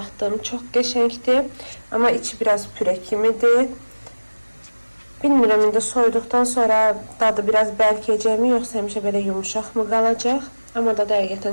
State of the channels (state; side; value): inverted; both; correlation -1.00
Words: Çox qəşəngdir. Amma içi biraz püre kimidir. Bilmirəm indi soyuduqdan sonra dadı biraz bərkəcəkmi, yoxsa həmişə belə yumuşaq mı qalacaq? Amma da